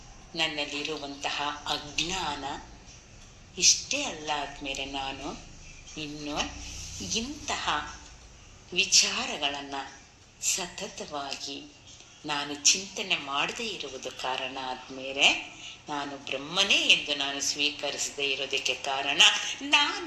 ನನ್ನಲ್ಲಿರುವಂತಹ ಅಜ್ಞಾನ ಇಷ್ಟೇ ಅಲ್ಲ ಆದ್ಮೇಲೆ ನಾನು ಇನ್ನು ಇಂತಹ ವಿಚಾರಗಳನ್ನ ಸತತವಾಗಿ ನಾನು ಚಿಂತನೆ ಮಾಡದೇ ಇರುವುದು ಕಾರಣ ಆದ್ಮೇಲೆ ನಾನು ಬ್ರಹ್ಮನೇ ಎಂದು ನಾನು ಸ್ವೀಕರಿಸದೇ ಇರೋದಕ್ಕೆ ಕಾರಣ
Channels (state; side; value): identical; both; correlation 1.00